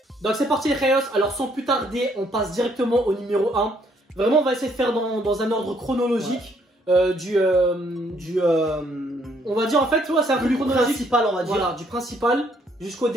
Donc c'est parti les Rayos. Alors sans plus tarder, on passe directement au numéro 1. Vraiment, on va essayer de faire dans un ordre chronologique. Ouais. On va dire en fait, ouais, c'est un peu chronologique. Principal, on va dire. Voilà, du principal jusqu'au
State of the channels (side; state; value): both; normal; correlation 0.68